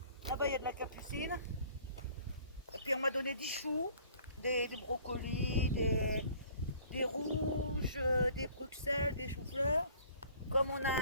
Là-bas, il y a de la capucine. Et puis, on m'a donné 10 choux, des brocolis, des rouges, des bruxelles, des choux-fleurs. Comme on a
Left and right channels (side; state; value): both; inverted; correlation -0.54